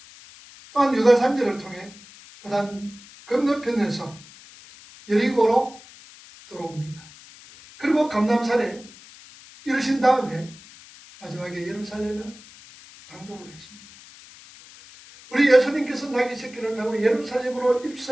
또한 유다 산지를 통해 그다음 건너편에서 여리고로 들어옵니다. 그리고 감람산에 이르신 다음에 마지막에 예루살렘에 당도를 했습니다. 우리 예수님께서 나귀 새끼를 타고 예루살렘으로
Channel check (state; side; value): noise; left; hiss, 21 dB below the sound